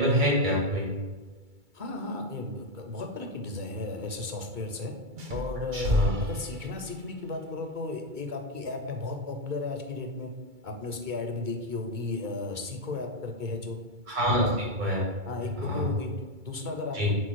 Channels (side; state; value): left; late; 2.3 ms